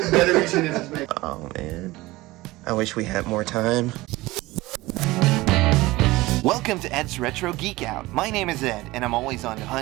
batteries in it. Oh man, I wish we had more time. Welcome to Ed's Retro Geek Out. My name is Ed, and I'm always on the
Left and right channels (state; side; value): quieter; left; 19.7 dB